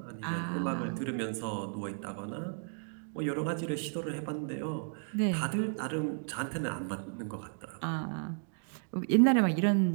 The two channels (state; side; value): silent; left; 55 dB below the other